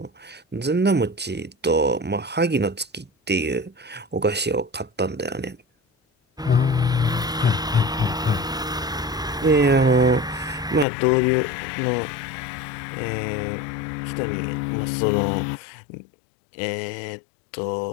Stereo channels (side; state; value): right; drops out; at 10.9 s